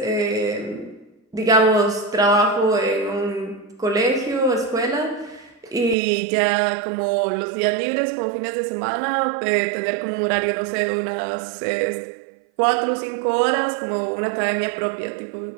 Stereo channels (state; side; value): drops out; left; at 6.0 s